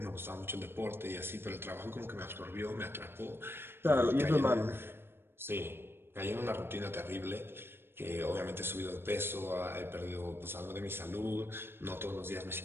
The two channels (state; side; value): late; left; 0.11 ms